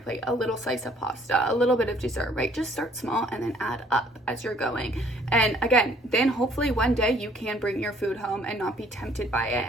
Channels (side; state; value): both; normal; correlation 0.60